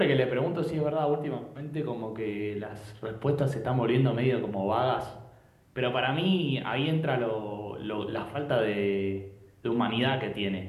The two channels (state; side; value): identical; both; correlation 1.00